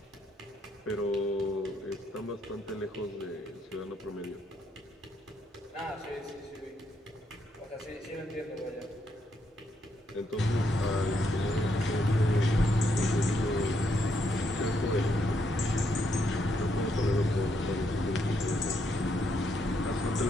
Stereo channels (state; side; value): normal; both; correlation 0.76